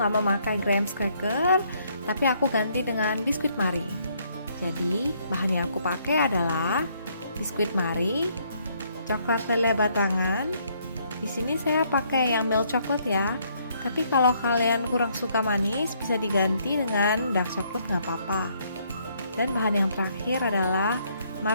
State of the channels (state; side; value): inverted; both; correlation -0.69